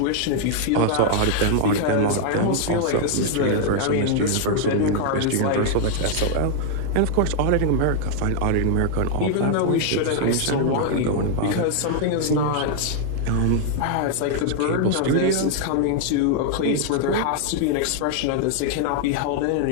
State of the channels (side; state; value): both; different; correlation 0.00